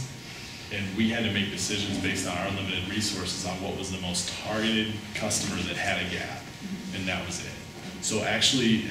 and we had to make decisions based on our limited resources on what was the most targeted customer that had a gap, and that was it. So actually,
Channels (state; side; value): identical; both; correlation 1.00